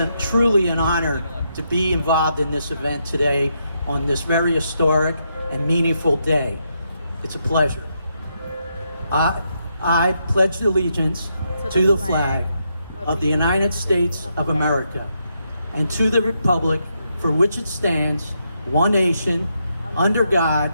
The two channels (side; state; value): both; inverted; correlation -0.80